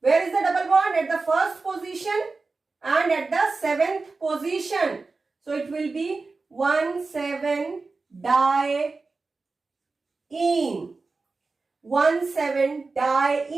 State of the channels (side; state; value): left; quieter; 3.9 dB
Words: is the double bond? At the 1st position and at the 7th position. So it will be 1,7-diene.